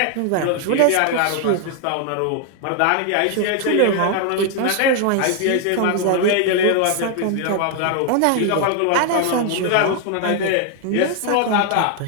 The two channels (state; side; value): different; both; correlation 0.00